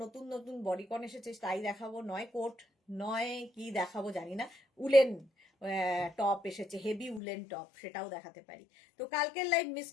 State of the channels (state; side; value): drops out; right; at 7.2 s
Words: নতুন নতুন বডিকন এসেছে তাই দেখাবো, নয় কোট, নয় কি দেখাবো জানি না, উলেন টপ এসেছে, হেভি উলেন টপ, সেটাও দেখাতে পারি। তো কালকের লাইভ মিস